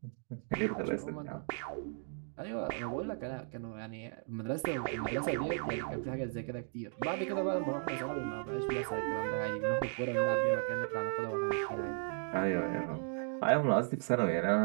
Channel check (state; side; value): silent; left; 54 dB below the other